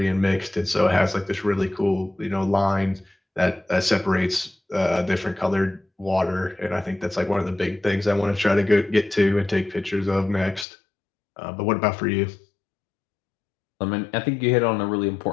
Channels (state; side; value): drops out; right; at 10.7 s